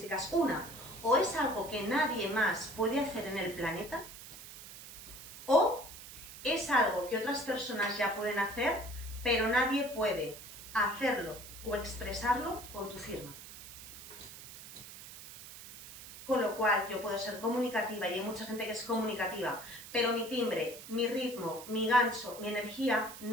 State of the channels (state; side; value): noise; right; hiss, 14 dB below the sound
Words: Una, o es algo que nadie más puede hacer en el planeta, o es algo que otras personas ya pueden hacer, pero nadie puede hacerlo o expresarlo con tu firma. Con lo cual yo puedo ser comunicativa y hay mucha gente que es comunicativa, pero mi timbre, mi ritmo, mi gancho, mi energía